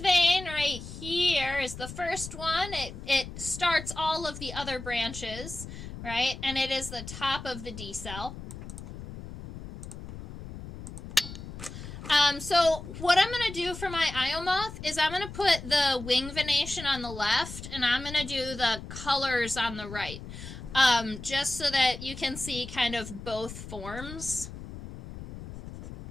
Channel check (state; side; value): noise; left; rumble, 11 dB below the sound